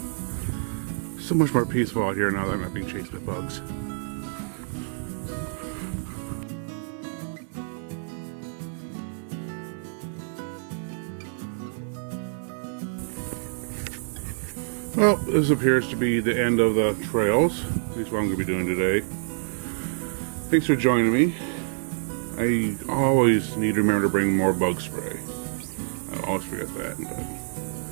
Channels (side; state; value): left; silent; 60 dB below the other